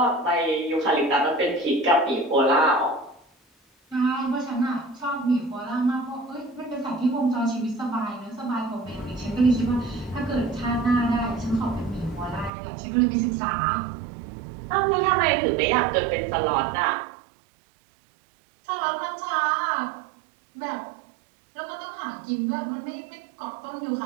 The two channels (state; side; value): drops out; left; at 12.5 s